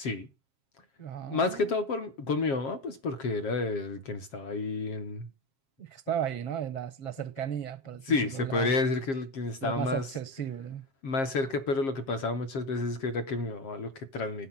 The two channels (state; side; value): late; right; 7.4 ms